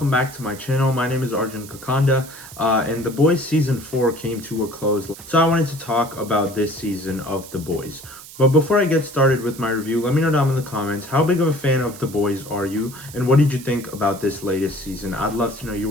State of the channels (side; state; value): right; noise; hiss, 16 dB below the sound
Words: back to my channel. My name is Arjun, and The Boys Season 4 came to a close. So I wanted to talk about this season of The Boys. But before I get started with my review, let me know down in the comments, how big of a fan of The Boys are you? And what did you think about this latest season? I'd love to know